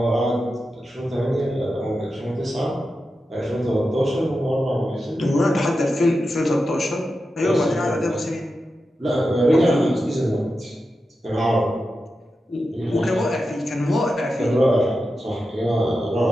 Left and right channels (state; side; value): normal; both; correlation 0.90